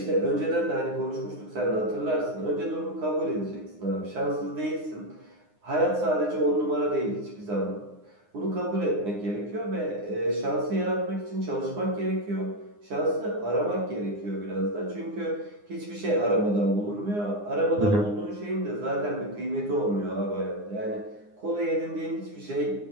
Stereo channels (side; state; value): left; late; 9.7 ms